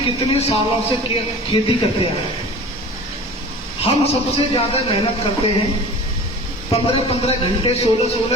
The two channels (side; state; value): both; normal; correlation 0.40